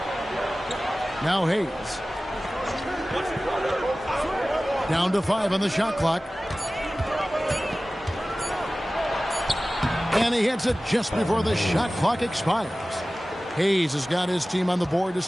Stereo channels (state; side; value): normal; both; correlation 0.97